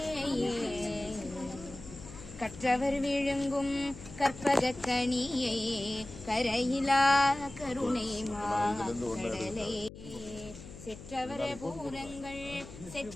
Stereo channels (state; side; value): noise; left; hum, 15 dB below the sound